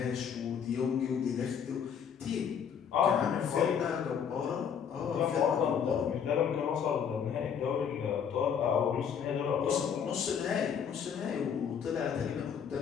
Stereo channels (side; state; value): right; quieter; 7.6 dB